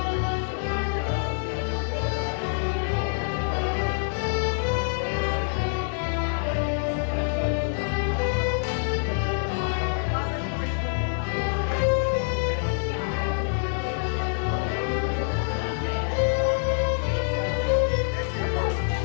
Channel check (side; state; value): right; silent; digital silence